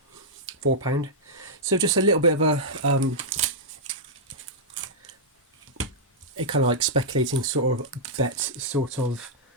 So just a little bit of a kind of like speculating sort of bet, sort of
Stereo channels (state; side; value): normal; both; correlation -0.08